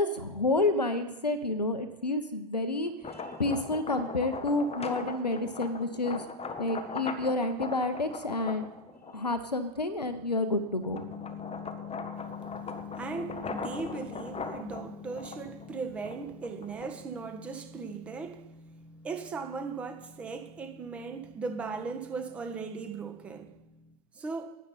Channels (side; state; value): both; normal; correlation 0.07